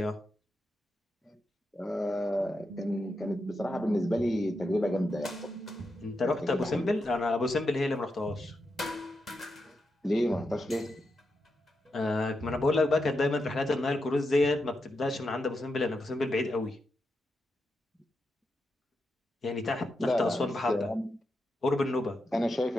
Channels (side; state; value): both; normal; correlation 0.86